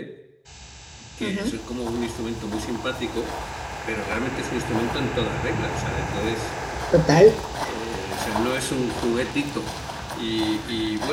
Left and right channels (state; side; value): identical; both; correlation 1.00